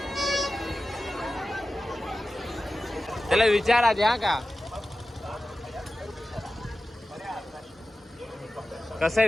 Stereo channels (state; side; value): normal; both; correlation 0.95